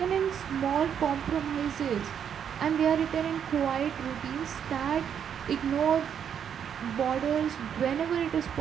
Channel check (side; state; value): left; quieter; 8.3 dB